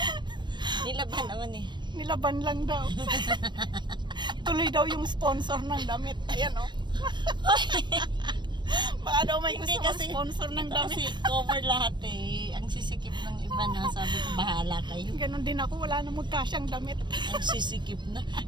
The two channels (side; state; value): left; late; 0.22 ms